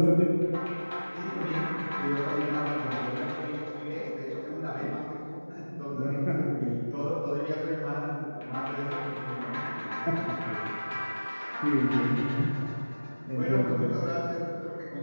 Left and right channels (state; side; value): inverted; both; correlation -1.00